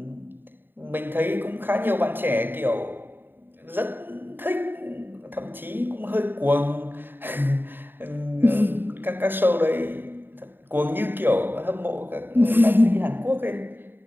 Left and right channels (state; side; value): late; left; 0.096 ms